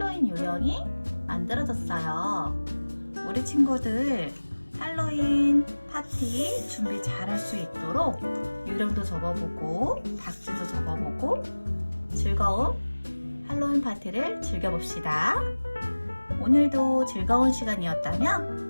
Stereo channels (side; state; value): both; inverted; correlation -1.00